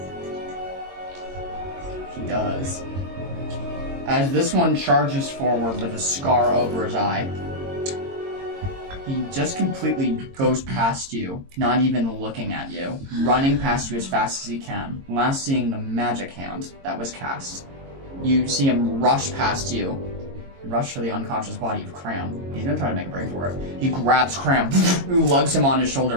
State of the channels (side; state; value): left; late; 22 ms